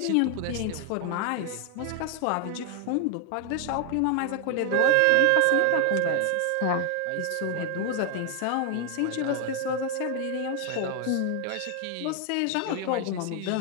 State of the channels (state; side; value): different; both; correlation 0.00